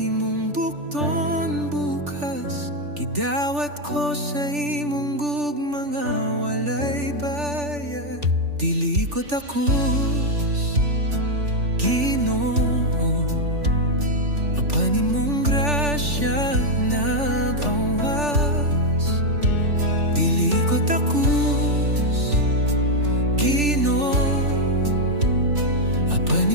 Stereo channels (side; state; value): left; late; 3.4 ms